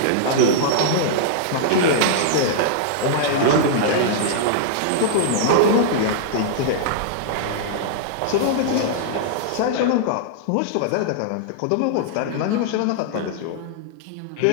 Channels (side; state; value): both; different; correlation -0.02